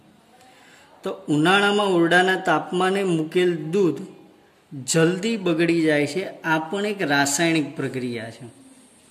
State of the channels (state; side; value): identical; both; correlation 1.00